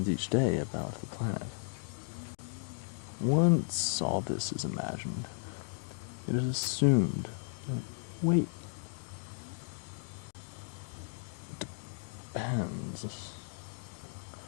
each day about the planet. Once all this is imagined, it is assumed that weight depends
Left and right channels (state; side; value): silent; right; digital silence